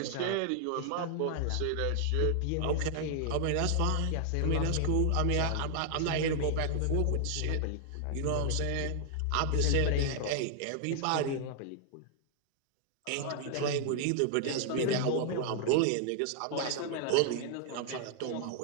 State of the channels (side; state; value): both; different; correlation 0.00